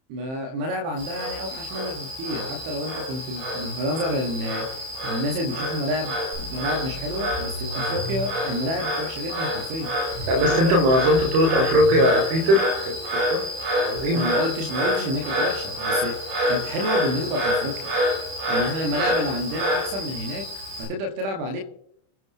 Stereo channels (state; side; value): late; left; 31 ms